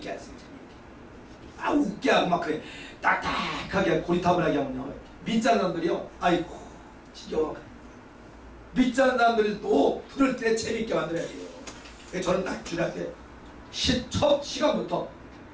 하세요. 재미있게. 웃게 하고 막 그래. 딱딱하게 고리타분하게 하면요. 믿지 않는 사람들이요. 아이고 지겨워. 믿지 않는 사람들이 또 부를 때 재미있게 만들어야 돼요. 그래서 저는 딱 주례할 때 첫 시간부터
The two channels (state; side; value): identical; both; correlation 1.00